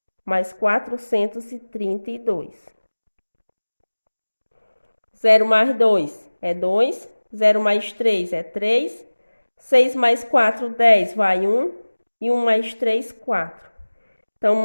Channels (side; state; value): both; inverted; correlation -1.00